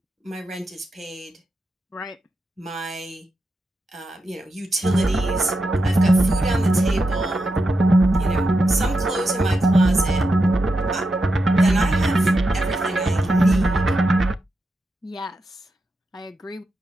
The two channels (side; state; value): both; normal; correlation 0.87